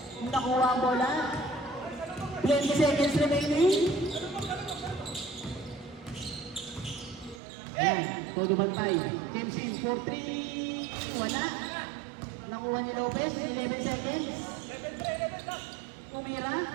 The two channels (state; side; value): drops out; left; at 7.4 s